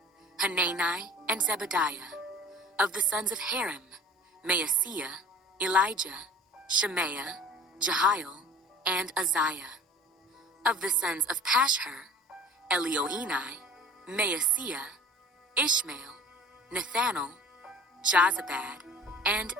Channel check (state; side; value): normal; both; correlation 0.45